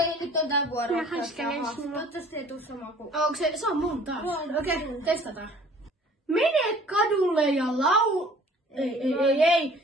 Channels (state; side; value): normal; both; correlation 0.51